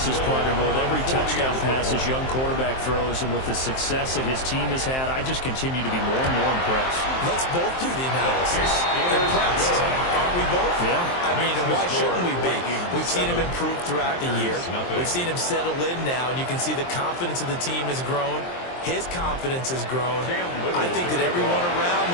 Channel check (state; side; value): late; right; 23 ms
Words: partner, but with every touchdown pass his young quarterback throws and with the success that his team has had, I just continue to be more and more impressed. Let's both do the analysis. Impressed. Aren't we both? Yeah. I mean, and why shouldn't we be? We've seen him improve throughout the year. We've seen him settle in now, and you can see the confidence of the team has grown. His confidence has grown. I think that everyone around